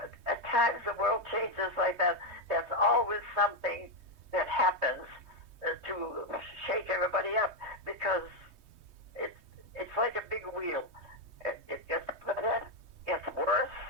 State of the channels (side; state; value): left; late; 3.2 ms